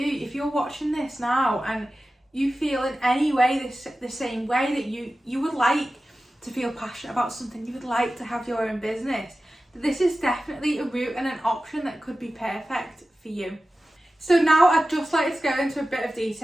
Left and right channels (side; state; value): both; normal; correlation 0.95